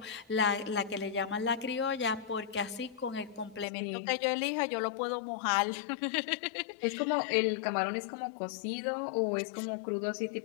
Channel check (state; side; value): drops out; right; at 3.7 s